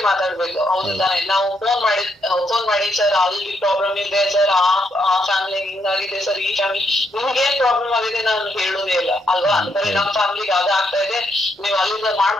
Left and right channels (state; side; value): normal; both; correlation 0.76